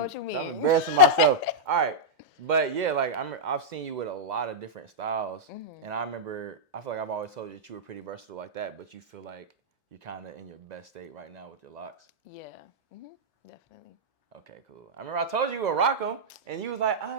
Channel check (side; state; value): both; normal; correlation -0.09